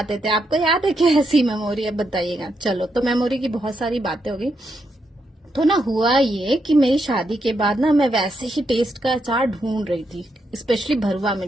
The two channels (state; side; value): normal; both; correlation 0.81